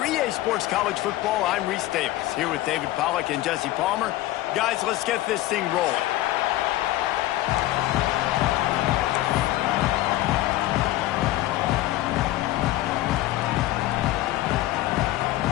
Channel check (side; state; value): right; quieter; 16.0 dB